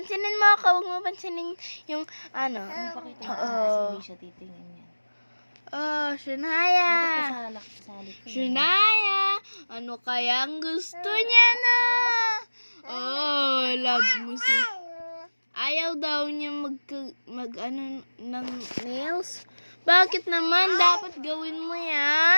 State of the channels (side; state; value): both; inverted; correlation -1.00